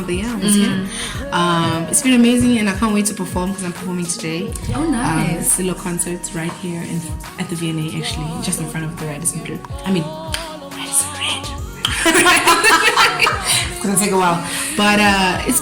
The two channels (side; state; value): both; identical; correlation 1.00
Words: the year I was here. It's been amazing, and I can't wait to perform because I'm performing today. Oh, nice. Solo concerts right here at the VNA, actually, just in front of the Radisson Blue. Radisson Red. It's gonna take a while, but it's